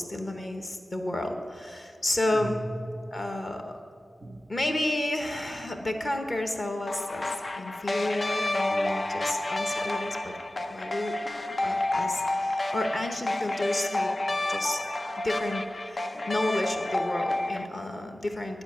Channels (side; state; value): both; normal; correlation 0.96